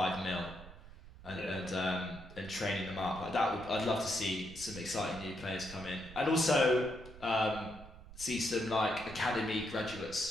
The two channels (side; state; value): right; noise; rumble, 17 dB below the sound